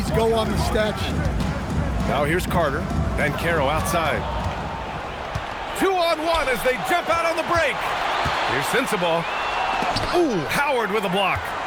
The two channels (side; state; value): both; identical; correlation 1.00